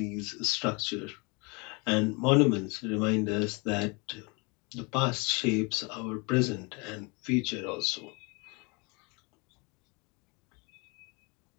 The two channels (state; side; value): quieter; right; 30.0 dB